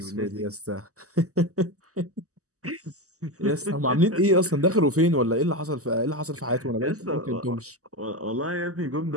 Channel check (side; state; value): left; late; 0.66 ms